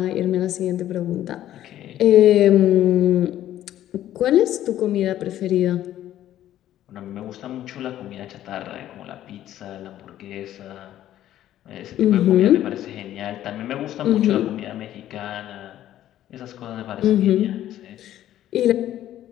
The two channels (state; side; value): quieter; right; 12.5 dB